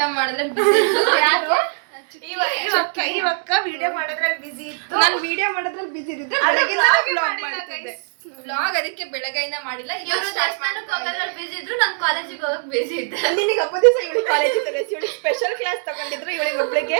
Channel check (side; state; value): left; silent; digital silence